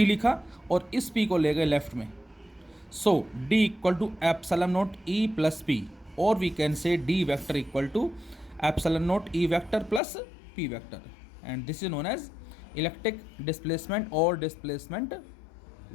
लिखा और इस P को ले गए लेफ्ट में। सो D = ε0 E + P, और we can say D vector = ε0 E vector + P vector, and this is known as electric displacement और डिस्प्लेसमेंट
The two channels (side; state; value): right; drops out; at 10.0 s